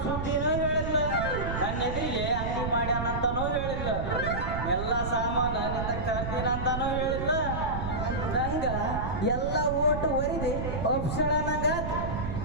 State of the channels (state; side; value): noise; right; rumble, 4 dB below the sound